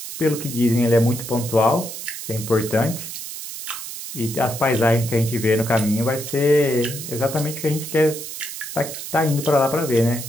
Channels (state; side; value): noise; right; hiss, 9 dB below the sound